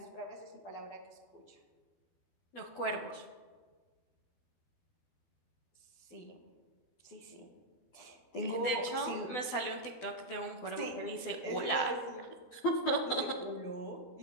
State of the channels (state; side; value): late; right; 12 ms